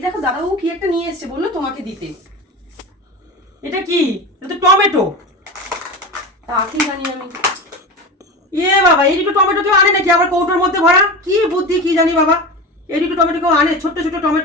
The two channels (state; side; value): normal; both; correlation 0.26